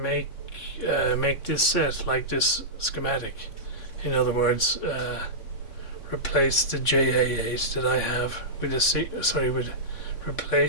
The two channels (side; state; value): right; late; 3.5 ms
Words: this set like this schematic. In other words, replace the JA8 that I have with